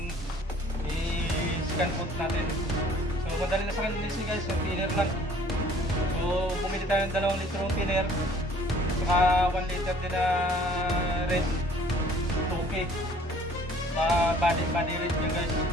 i-scan foot natin. So madali na sa linisin guys, yung thinner lang. So bumili tayo ng 2 litrong thinner saka 1 liter din na red 2K. Body red yun guys.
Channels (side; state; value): both; normal; correlation 0.54